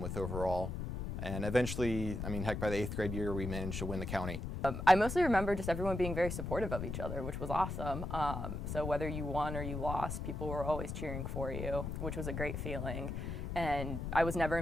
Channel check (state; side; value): noise; left; rumble, 4 dB below the sound